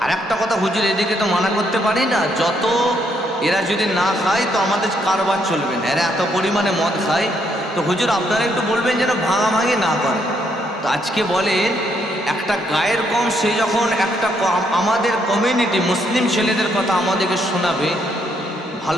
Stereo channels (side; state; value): both; normal; correlation 0.73